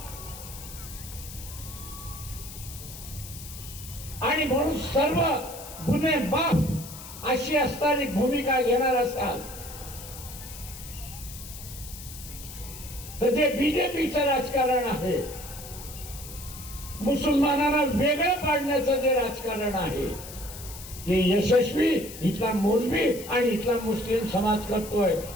आणि म्हणून सर्व गुन्हे माफ अशी असणारी भूमिका घेणार असाल तर जे बीजेपीचं राजकारण आहे, मुसलमानांना वेगळं पाडण्याचं जे राजकारण आहे ते यशस्वी इथला मौलवी आणि इथला मुस्लिम समाज करतोय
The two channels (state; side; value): noise; left; hiss, 13 dB below the sound